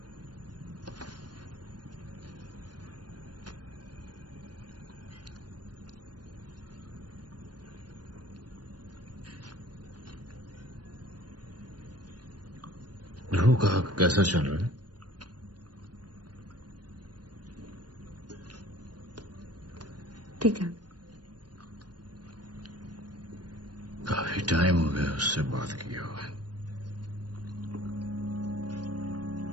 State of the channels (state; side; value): late; left; 0.69 ms